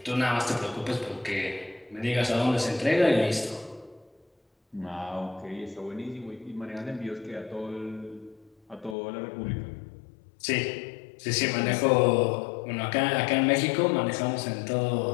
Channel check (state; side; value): drops out; right; at 9.0 s